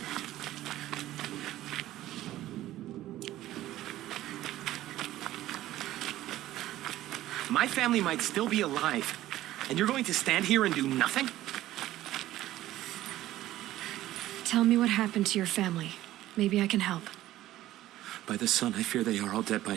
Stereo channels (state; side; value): quieter; left; 14.7 dB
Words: My family might still be alive, and you're going to stand here and do nothing? Tell me what happened to your family. Maybe I can help. By the sun, I fear they are all dead